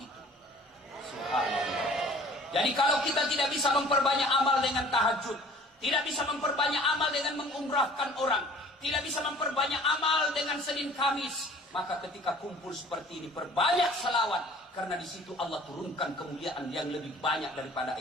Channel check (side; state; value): both; normal; correlation 0.49